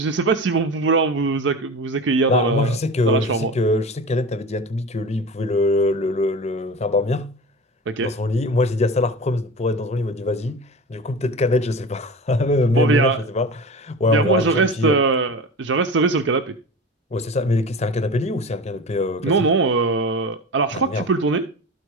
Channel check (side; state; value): both; normal; correlation 0.32